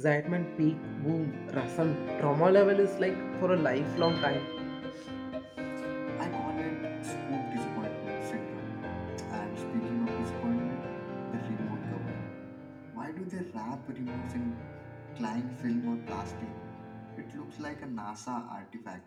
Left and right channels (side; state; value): both; identical; correlation 1.00